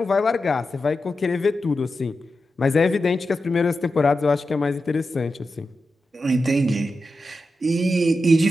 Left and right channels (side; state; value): both; normal; correlation 0.90